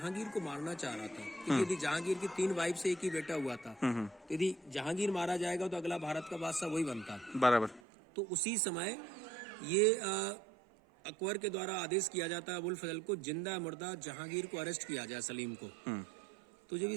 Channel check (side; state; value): left; drops out; at 7.8 s